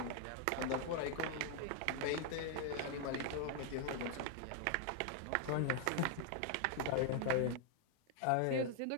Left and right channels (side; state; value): both; different; correlation 0.00